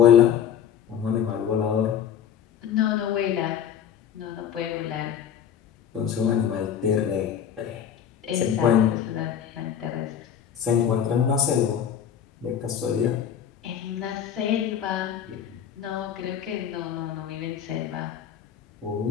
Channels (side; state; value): right; quieter; 8.8 dB